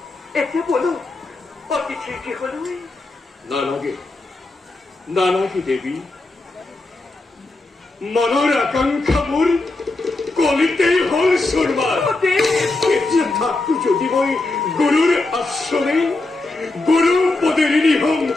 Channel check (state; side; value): quieter; right; 3.1 dB